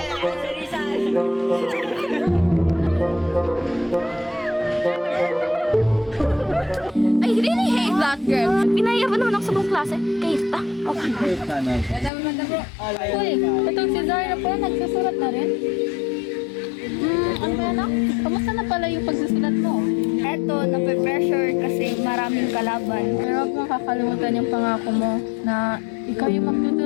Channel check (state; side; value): drops out; right; at 12.1 s